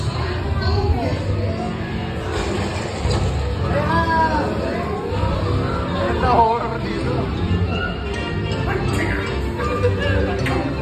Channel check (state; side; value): identical; both; correlation 1.00